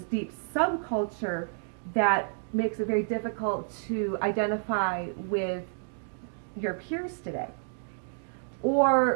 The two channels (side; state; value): left; silent; digital silence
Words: deep subculture that makes it very difficult to identify with your peers today.